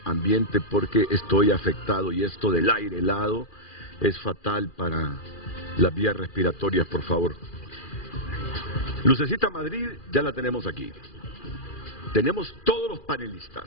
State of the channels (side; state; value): right; late; 2.4 ms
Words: ambiente porque estoy afectado y esto del aire helado es fatal para las vías respiratorias, por favor. Lucecita Madrid ya la tenemos aquí. Tenemos todos los panelistas.